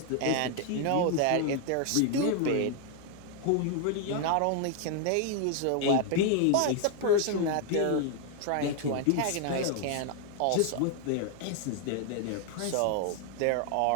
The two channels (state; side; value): different; both; correlation 0.00